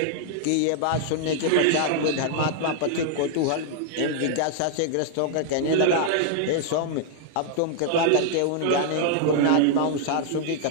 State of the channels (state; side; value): different; both; correlation 0.00